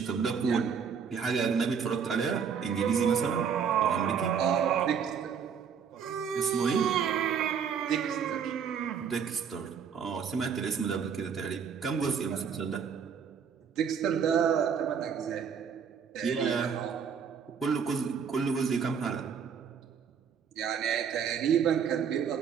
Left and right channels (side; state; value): left; quieter; 7.0 dB